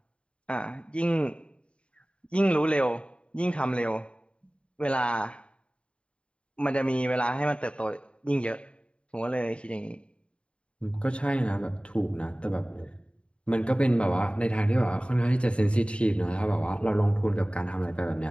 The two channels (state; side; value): late; right; 0.057 ms